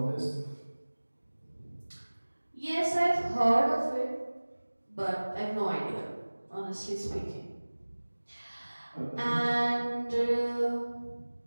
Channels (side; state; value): both; inverted; correlation -1.00